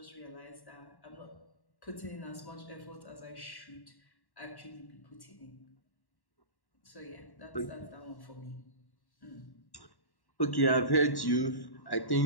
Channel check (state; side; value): late; right; 1.1 ms